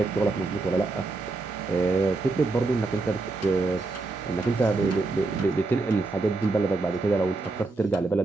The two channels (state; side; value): quieter; left; 3.4 dB